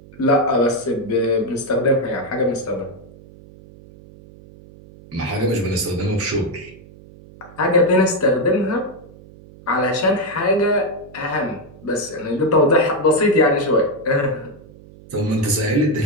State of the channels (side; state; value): right; noise; hum, 21 dB below the sound